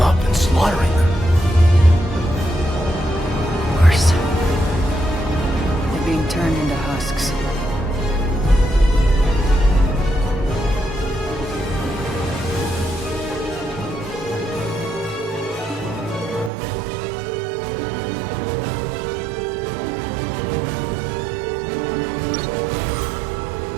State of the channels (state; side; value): drops out; left; at 16.5 s